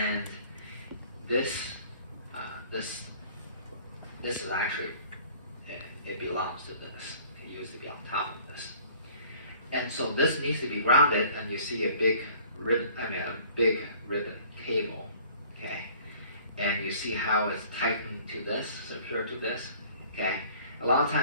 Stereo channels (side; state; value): both; inverted; correlation -0.52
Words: this is actually, it belongs to this. It used to be on top of this. And so this needs to be grounded, and you see a big ribbon, cable, okay? And you see how it's tightened to this, secured to this, okay? A lot of